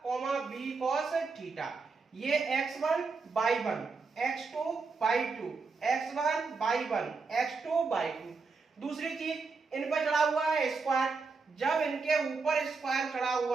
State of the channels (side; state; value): left; quieter; 4.5 dB